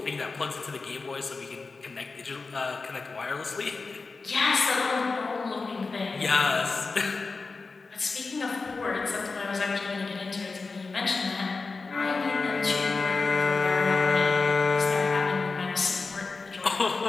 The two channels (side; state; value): right; quieter; 4.1 dB